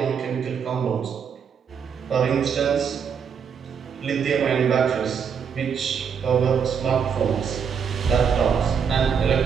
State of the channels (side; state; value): left; quieter; 7.0 dB